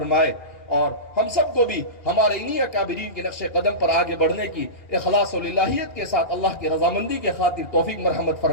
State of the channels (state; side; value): late; right; 2.8 ms